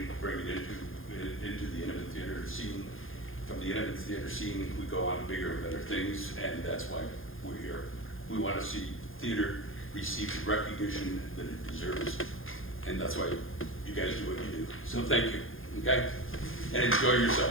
to bring it into the intimate theater scene. From the intimate theater scene, we go on to bigger and better things, and that's why we're here. We want to see theater receive the recognition that it deserves, and that's why you guys do what you do. So thank you, okay? And enjoy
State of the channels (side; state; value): right; late; 0.59 ms